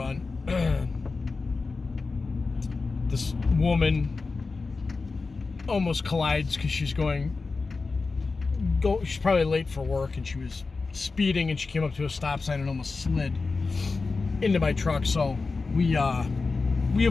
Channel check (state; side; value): quieter; right; 4.1 dB